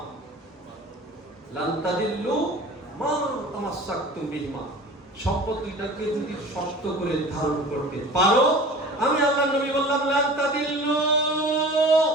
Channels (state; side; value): normal; both; correlation 0.40